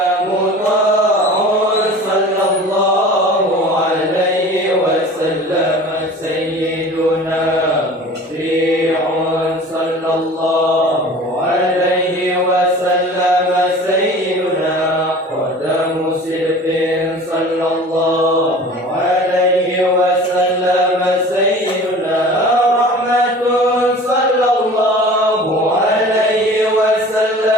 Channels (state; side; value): normal; both; correlation 0.41